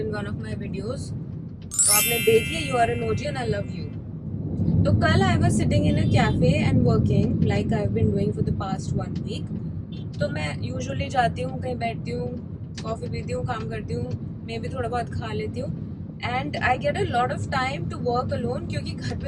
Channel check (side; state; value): both; identical; correlation 1.00